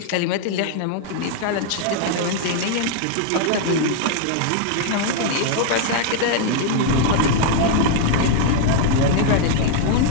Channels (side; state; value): both; different; correlation 0.00